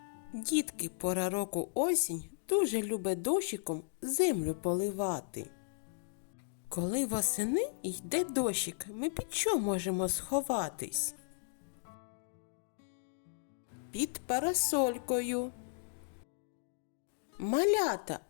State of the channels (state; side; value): silent; right; digital silence